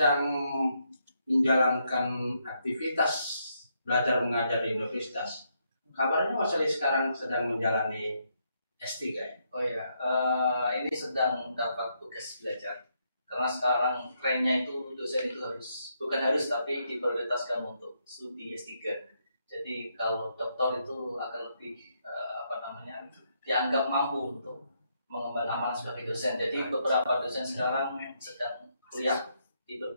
menjalankan aktivitas belajar mengajar di universitas. Kabarnya Mas Ali sekarang sedang menjalani S3 ya? Oh iya, ini sedang dapat tugas belajar. Karena sekarang trennya itu dosen itu bukan harus tapi diprioritaskan untuk studi S3. Jadi kalau doktor itu akan lebih dianggap mampu untuk mengemban amanah sebagai dosen. Jadi beberapa dosen sekarang sedang kuliah di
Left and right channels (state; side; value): inverted; both; correlation -0.77